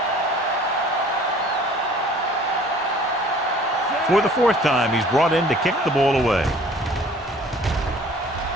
For the fourth time, he's brought in to kick the ball away.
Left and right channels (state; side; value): normal; both; correlation 0.51